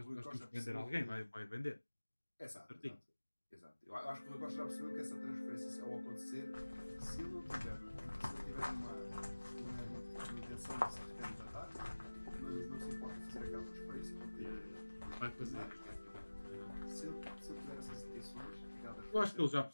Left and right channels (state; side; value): inverted; both; correlation -1.00